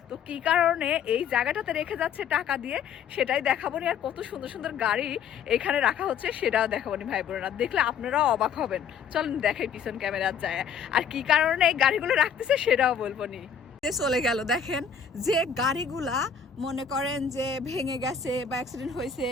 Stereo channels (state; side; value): quieter; right; 7.1 dB